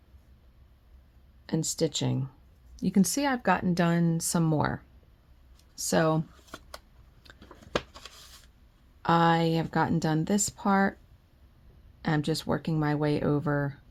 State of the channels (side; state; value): both; identical; correlation 1.00